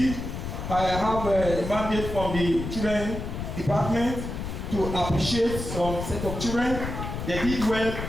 I have a mandate from the children department to appreciate some set of children. They did well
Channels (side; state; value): left; noise; rumble, 6 dB below the sound